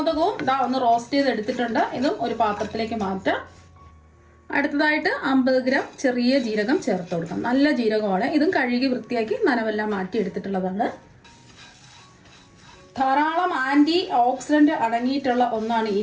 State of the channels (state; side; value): identical; both; correlation 1.00